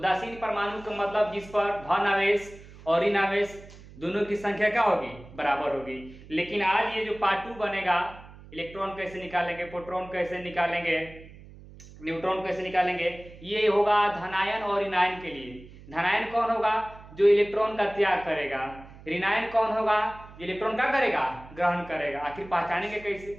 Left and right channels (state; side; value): noise; right; hum, 19 dB below the sound